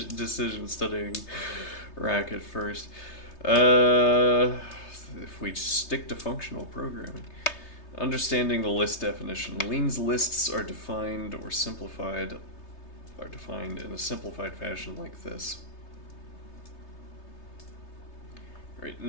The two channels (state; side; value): late; right; 3.3 ms